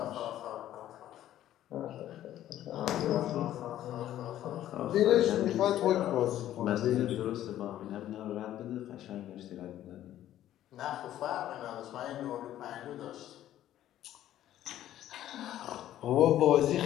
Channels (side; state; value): right; quieter; 12.6 dB